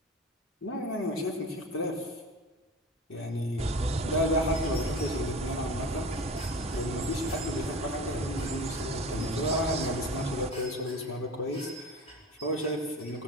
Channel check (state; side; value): normal; both; correlation 0.34